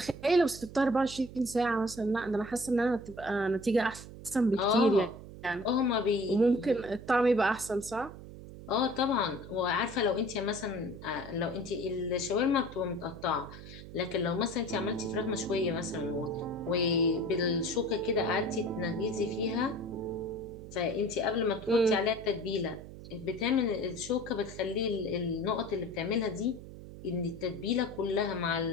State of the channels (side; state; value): right; noise; hum, 14 dB below the sound